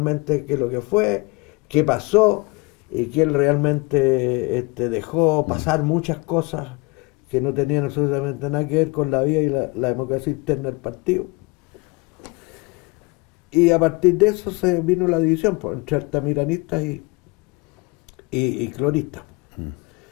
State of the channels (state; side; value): quieter; right; 26.1 dB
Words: qué es lo que fue, qué pasó, y que él realmente dejó pasar muchas cosas que no tenían absolutamente nada que ver con la vida y la democracia interna del partido. Y a partir de eso se vino la división entre altamiranistas y cloristas.